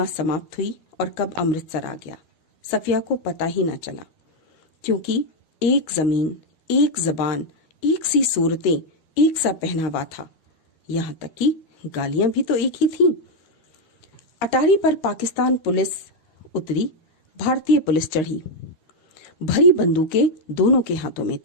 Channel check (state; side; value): late; right; 12 ms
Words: समाप्त हुई और कब अमृतसर आ गया, सफिया को पता ही न चला, क्योंकि एक जमीन, एक जबान, एक सी सूरतें, एक सा पहनावा था। यहाँ तक कि गालियां भी तो एक ही थीं। अटारी पर पाकिस्तान पुलिस उतरी, भारतीय पुलिस चढ़ी। भरी बंदूकें दोनों के हाथों में